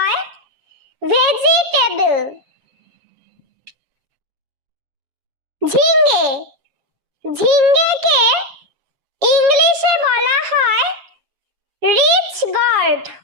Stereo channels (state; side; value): late; left; 7.2 ms